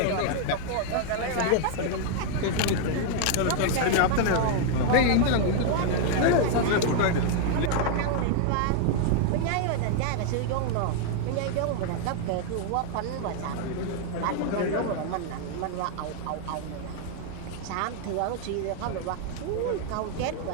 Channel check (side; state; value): both; different; correlation 0.00